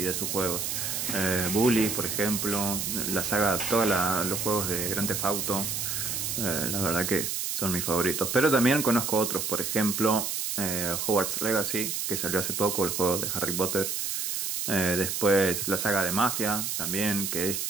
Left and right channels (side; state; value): right; noise; hiss, 2 dB below the sound